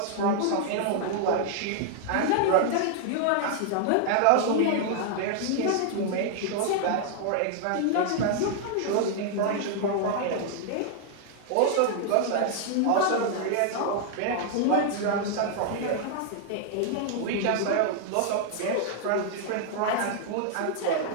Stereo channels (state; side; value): different; both; correlation 0.00